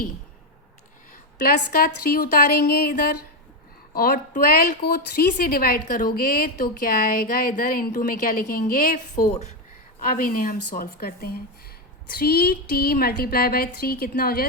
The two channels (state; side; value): normal; both; correlation 0.08